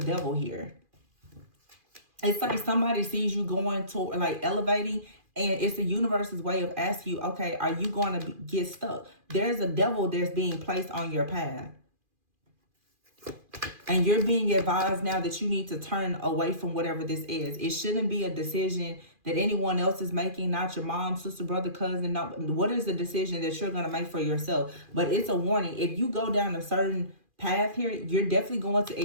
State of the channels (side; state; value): left; late; 2.4 ms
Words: devil here. It's like somebody sees you going to, like, elevating, and it's the universe's way of asking you, okay, are you going to get stuck? There's a devil that's being placed on your path. And you're being advised now that you need to turn away from whatever this is. It shouldn't be a decision that anyone else is making, not your mom, sister, brother, cousin. No, what is the decision that you're going to make for yourself? But it's a warning. If you go down a certain path here, you're definitely going to